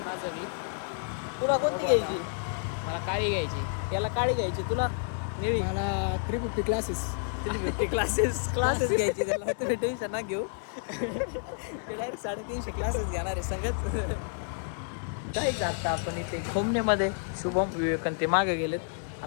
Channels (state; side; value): silent; right; digital silence